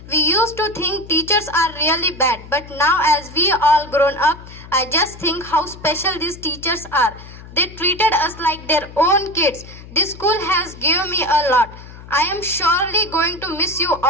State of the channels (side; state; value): left; noise; hum, 17 dB below the sound